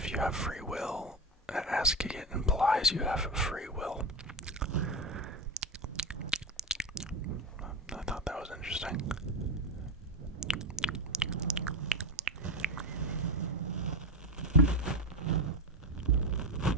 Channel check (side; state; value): both; normal; correlation 0.15